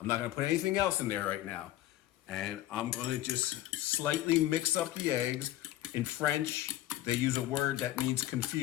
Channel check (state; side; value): quieter; right; 14.5 dB